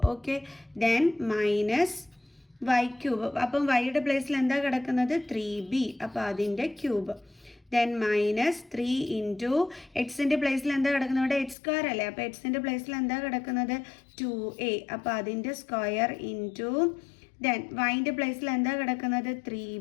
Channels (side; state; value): right; drops out; at 11.6 s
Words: Okay, then -y³. അപ്പം വൈയുടെ പ്ലേസിൽ എന്താ കിടക്കുന്നത്? 3b. അപ്പോൾ അതിൻ്റെ ക്യൂബ് ദെൻ മൈനസ് 3 ഇൻറ്റു എക്സിൻ്റെ പ്ലേസിൽ എന്താ കിടക്കുന്നത്, ഇവിടെ എക്സ് സ്ക്വയർ അല്ലേ, അപ്പോൾ എക്സിൻ്റെ പ്ലേസിൽ എന്താ കിടക്കുന്നത് 2a, അപ്പോൾ അതിൻ്റെ സ്ക്വയർ ഇൻറ്റു ദെൻ വൈൻ്റെ പ്ലേസിൽ എന്താ കിടക്കുന്നത്